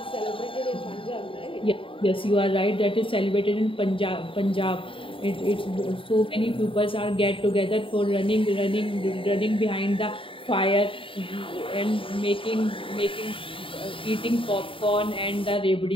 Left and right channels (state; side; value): late; right; 0.25 ms